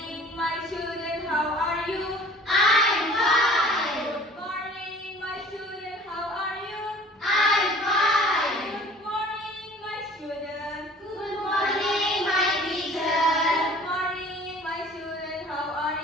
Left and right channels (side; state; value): both; normal; correlation 0.49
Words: my children, how are you? I'm fine. Good morning, my children, how are you? I'm fine. Good morning, my children. Good morning, my teacher. Good morning, my children, how are